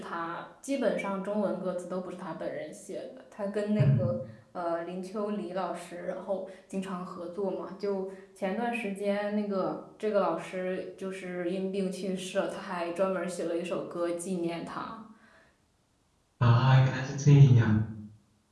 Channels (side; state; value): both; identical; correlation 1.00